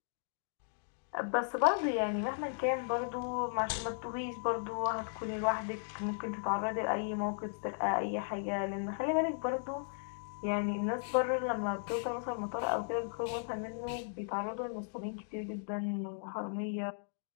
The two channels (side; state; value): right; silent; digital silence